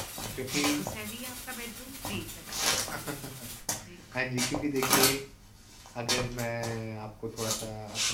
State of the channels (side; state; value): both; identical; correlation 1.00